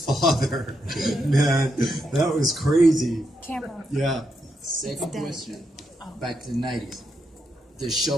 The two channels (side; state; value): both; normal; correlation 0.82